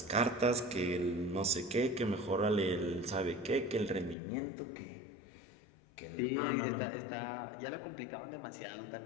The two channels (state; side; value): drops out; right; at 4.2 s